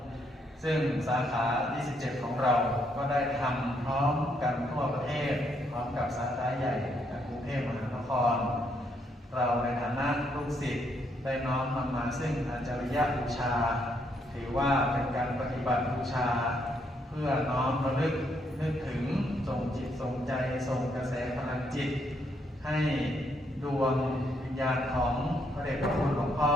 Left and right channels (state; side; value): normal; both; correlation 0.74